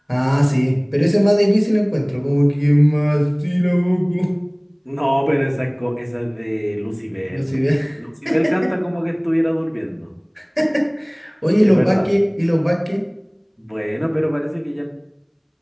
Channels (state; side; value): identical; both; correlation 1.00